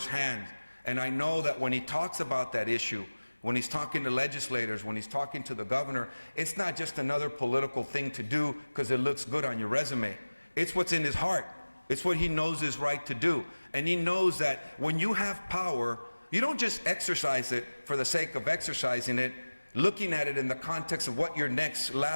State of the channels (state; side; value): inverted; both; correlation -1.00